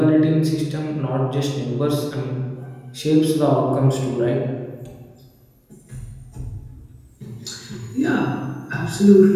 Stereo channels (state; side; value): identical; both; correlation 1.00